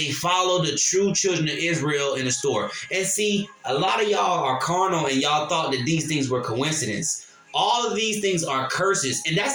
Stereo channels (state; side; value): identical; both; correlation 1.00